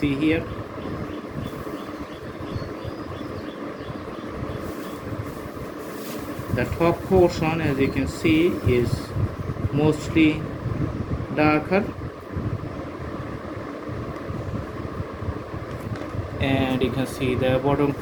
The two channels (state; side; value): identical; both; correlation 1.00